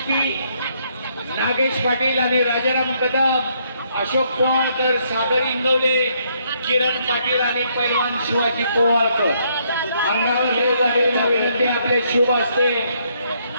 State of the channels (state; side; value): inverted; both; correlation -0.71